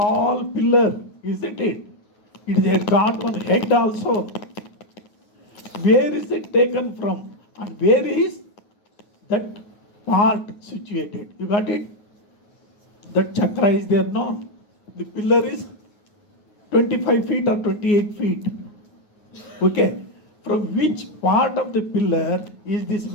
pillar, isn't it? It has got one head also. Where is it taken from? And where is that part situated? You got it? That chakra is there, no? The pillar is 25 feet or 28 feet. Okay. From which part of the pillar is this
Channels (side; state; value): right; late; 9.4 ms